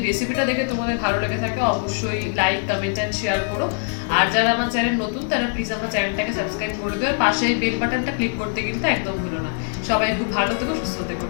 রেসিপিটা দেখে তোমাদের ভালো লেগে থাকে, অবশ্যই লাইক, কমেন্ট অ্যান্ড শেয়ার করো। আর যারা আমার চ্যানেল নতুন তারা প্লিজ আমার চ্যানেলটাকে সাবস্ক্রাইব করে দিও, আর পাশে বেল বাটনটা ক্লিক করতে কিন্তু একদম ভুলো না। সবাই খুব ভালো থেকো, সুস্থ থেকো।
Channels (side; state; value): right; silent; 58 dB below the other